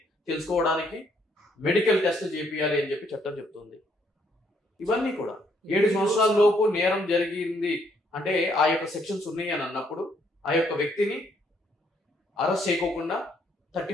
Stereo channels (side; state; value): both; normal; correlation 0.70